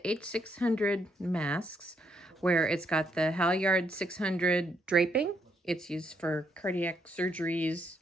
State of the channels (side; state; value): both; normal; correlation 0.75